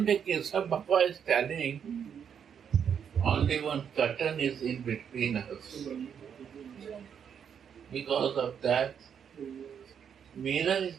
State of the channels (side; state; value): left; quieter; 7.8 dB